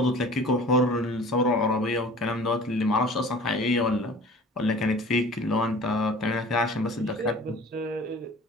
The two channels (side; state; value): both; normal; correlation 0.44